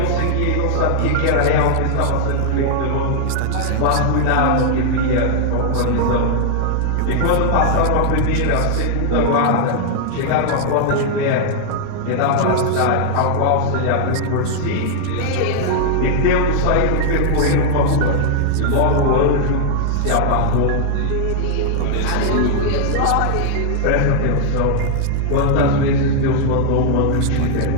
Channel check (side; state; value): both; different; correlation 0.00